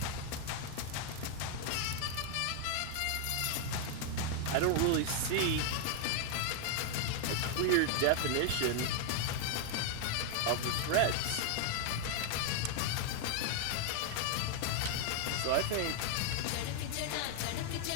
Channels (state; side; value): different; both; correlation 0.00